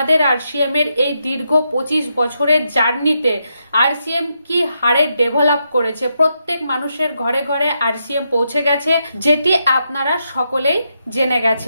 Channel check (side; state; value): both; inverted; correlation -0.82